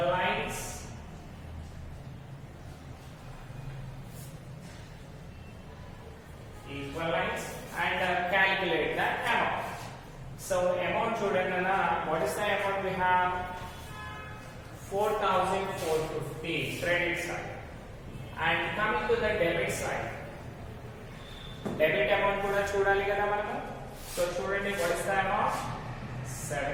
lines, and calculate the amount. So amount చూడండి అన్న, what is the amount we have, 4450 credit side. And coming to the debit side, debit amount కూడా చూడాలి కదా మనము. సో చూడండి, వాట్ ఇస్ ద అమౌంట్?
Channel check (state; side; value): identical; both; correlation 1.00